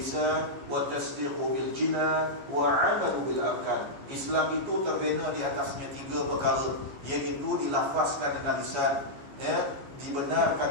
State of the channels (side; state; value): left; late; 15 ms